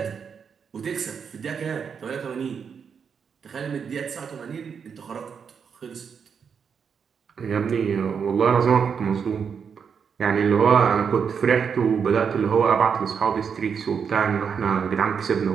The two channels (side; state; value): left; quieter; 6.6 dB